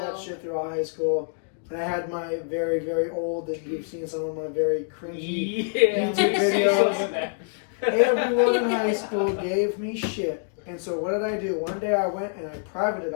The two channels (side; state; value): right; silent; digital silence